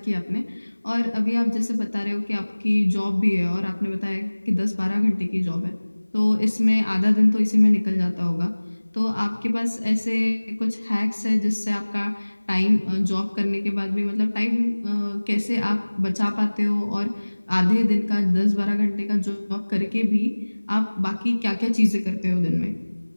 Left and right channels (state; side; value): inverted; both; correlation -1.00